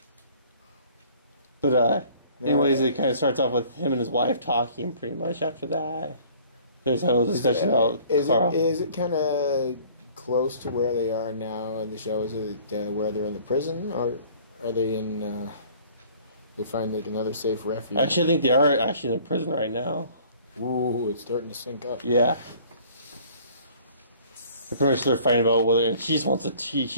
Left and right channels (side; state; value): both; inverted; correlation -0.53